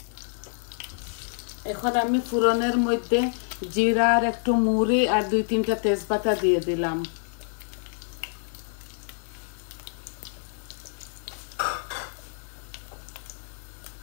এখন আমি ফোড়নের মধ্যে জিরা আর একটু মুড়ি আর 2-3টা তেজপাতা দিয়ে দিলাম।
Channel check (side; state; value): right; silent; digital silence